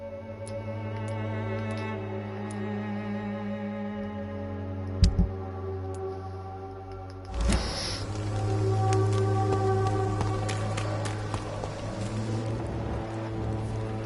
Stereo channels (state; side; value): identical; both; correlation 1.00